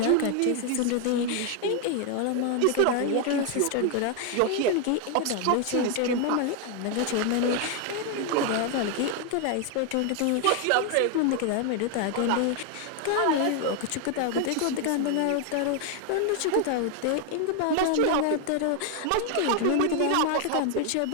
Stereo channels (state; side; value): different; both; correlation 0.00